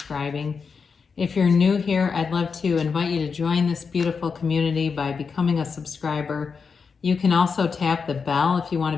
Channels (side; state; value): right; quieter; 5.5 dB